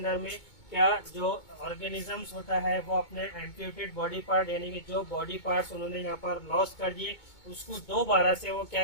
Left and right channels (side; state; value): right; late; 2.2 ms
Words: में, क्या जो ऑर्गेनिजम्स होता है वो अपने एम्प्यूटेड बॉडी पार्ट, यानी कि जो बॉडी पार्ट्स उन्होंने यहाँ पर लॉस कर दिए, उसको दोबारा से वो